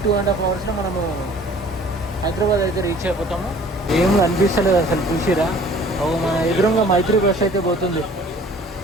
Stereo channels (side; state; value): both; normal; correlation 0.51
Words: 2.5 hours మనము హైదరాబాద్ అయితే రీచ్ అయిపోతాము. ఏం అనిపిస్తలేదు అసలు. చూసిరా, మన ఎదురుగా మైత్రి బస్ అయితే పోతుంది.